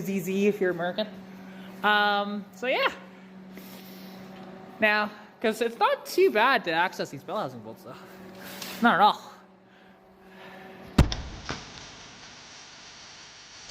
if you're American. So yeah. Now, because it's not too bad to access these bell housing bolts though. Not at all.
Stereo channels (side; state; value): both; identical; correlation 1.00